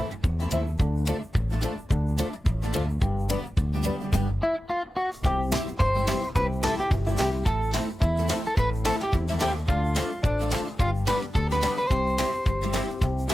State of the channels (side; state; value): both; normal; correlation 0.94